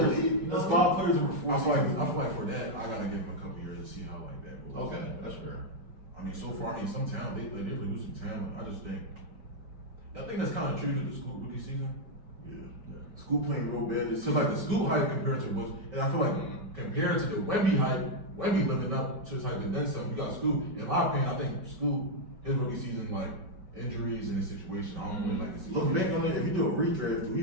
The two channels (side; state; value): left; late; 5.4 ms